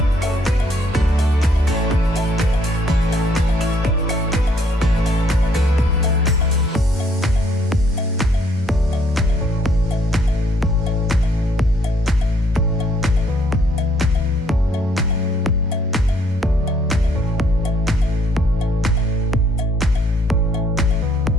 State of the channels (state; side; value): normal; both; correlation 0.66